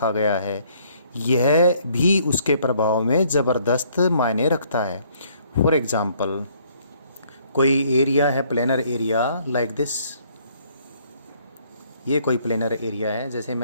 गया है, यह भी उसके प्रभाव में ज़बरदस्त मायने रखता है। फॉर एग्ज़ाम्पल, कोई एरिया है प्लेनर एरिया लाइक दिस। ये कोई प्लेनर एरिया है। जैसे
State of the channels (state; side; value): inverted; both; correlation -0.64